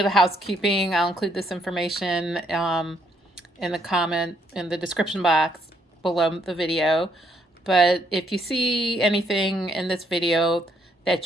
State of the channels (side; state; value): both; normal; correlation 0.72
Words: of housekeeping. I'll include this information in the description box below the video. But if you see anything in this video